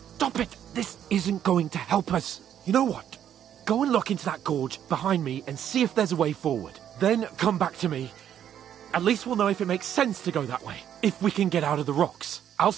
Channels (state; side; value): quieter; left; 9.9 dB